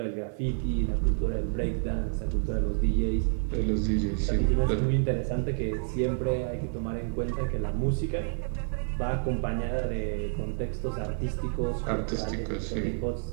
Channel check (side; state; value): left; silent; digital silence